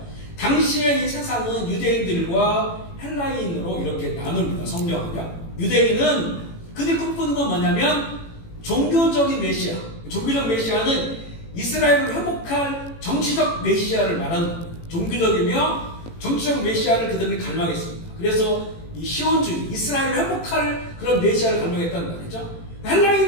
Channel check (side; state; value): right; late; 18 ms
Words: 당시의 이 세상은 유대인들과 헬라인으로 이렇게 나눕니다. 성경은요. 유대인은 그들 꿈꾸는 건 뭐냐면 종교적인 메시아. 종교적 메시아는 이스라엘을 회복할 정치적 메시아를 말하는 겁니다. 종교적이며 정치적 메시아를 그들은 갈망했습니다. 그래서 이 시온주의, 이스라엘을 회복할 그런 메시아를 갈망했다는 말이죠.